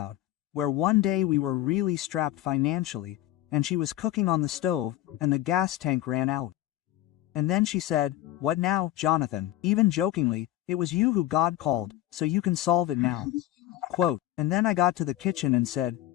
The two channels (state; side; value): quieter; right; 14.4 dB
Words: where one day we were really strapped financially, and she was cooking on the stove, and the gas tank ran out. And then she said, "What now, Jonathan?" Even jokingly, "It was you who God called, so you can solve it now." Quote, and then I got to the kitchen and said,